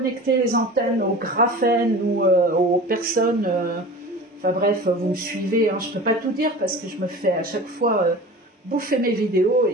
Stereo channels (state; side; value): normal; both; correlation 0.36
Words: les antennes au graphène ou aux personnes. Enfin bref, vous me suivez, hein, je ne peux pas tout dire parce que je me fais à chaque fois bouffer mes vidéos